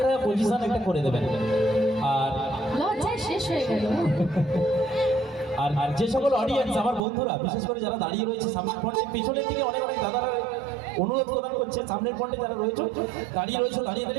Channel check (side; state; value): left; drops out; at 7.0 s